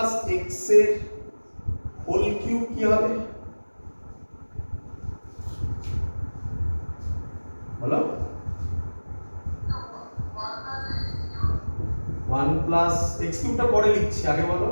x এর হোল কিউব কি হবে? বলো। 1 প্লাস x কিউবটা পরে লিখছি, আগে বলো।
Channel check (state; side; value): inverted; both; correlation -1.00